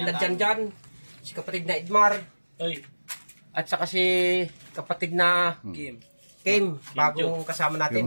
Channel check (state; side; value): inverted; both; correlation -1.00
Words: na Janjan, si kapatid na Edmar, at saka si kapatid na Kim, bagong kasama